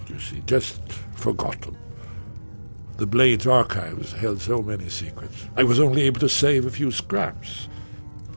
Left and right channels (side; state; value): both; inverted; correlation -1.00